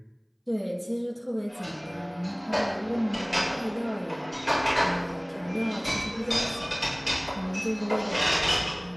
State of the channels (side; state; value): both; identical; correlation 1.00